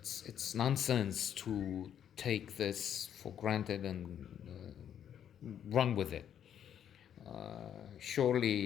nonsense to take this for granted and run with it.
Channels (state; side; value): quieter; right; 9.4 dB